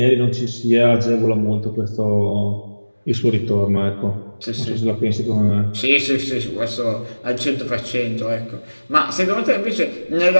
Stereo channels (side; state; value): both; inverted; correlation -1.00